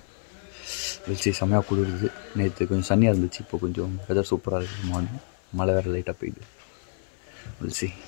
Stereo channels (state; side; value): silent; right; 60 dB below the other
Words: வெளிச்சி செம்மையாக குளிருது. நேற்று கொஞ்சம் சன்னியாக இருந்துச்சு, இப்போ கொஞ்சம் வெதர் சூப்பராக இருக்குது. மார்னிங் மழை வேறு லைட்டாக பெய்யுது. வெளிச்சி